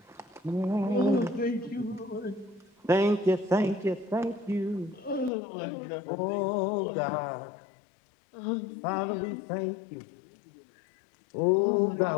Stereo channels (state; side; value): drops out; right; at 5.3 s